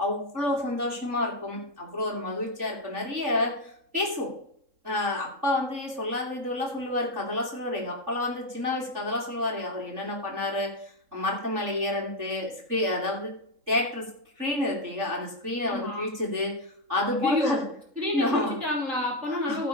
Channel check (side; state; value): left; late; 3.7 ms